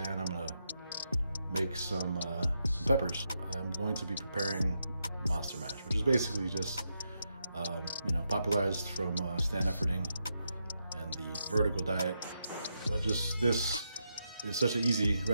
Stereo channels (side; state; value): both; inverted; correlation -0.83